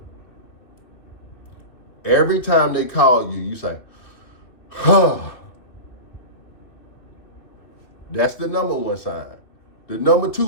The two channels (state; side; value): late; right; 2.8 ms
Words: Every time they call you, you say, huh. That's the number 1 sign. The number